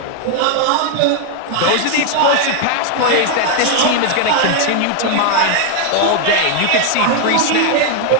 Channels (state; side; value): different; both; correlation 0.01